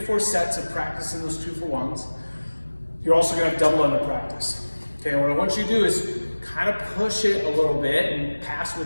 sets of practicing those 2-for-1s. You're also going to have double under practice. Okay, and what I want you to do is kind of push it a little bit and pass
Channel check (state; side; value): inverted; both; correlation -1.00